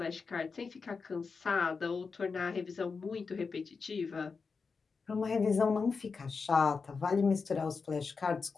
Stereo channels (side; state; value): right; quieter; 4.9 dB